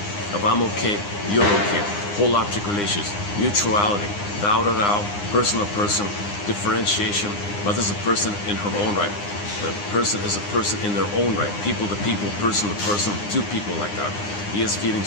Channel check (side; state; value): right; late; 9.8 ms